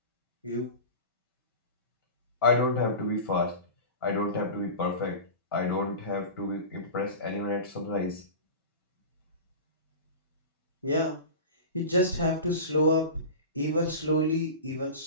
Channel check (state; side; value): inverted; both; correlation -0.31